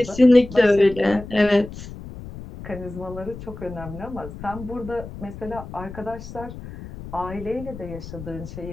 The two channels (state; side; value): noise; left; rumble, 13 dB below the sound